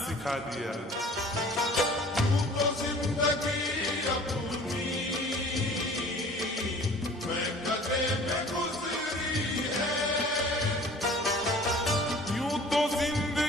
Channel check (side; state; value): both; normal; correlation 0.48